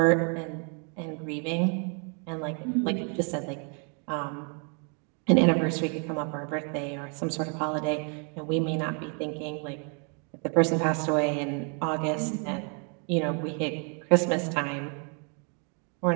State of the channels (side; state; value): left; quieter; 39.0 dB